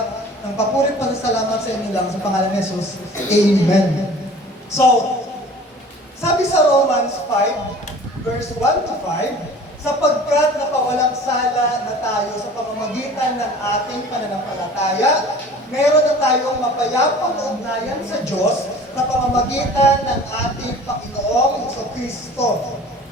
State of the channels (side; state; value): both; normal; correlation 0.45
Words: ng papurit pa sa salamat sa inyo lang, sa pangalan ni Jesus. Amen. So, sabi sa Romans 5, verse 1 to 5, sapagkat napawalang sala na tayo sa pamamagitan ng ating pananampalataya, meron na tayong mapayapang ugnayan sa Diyos sa pamamagitan ng ating Panginoong Jesucristo.